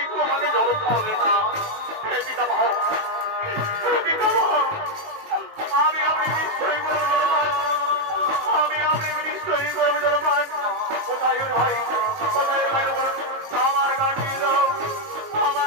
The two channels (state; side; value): late; left; 19 ms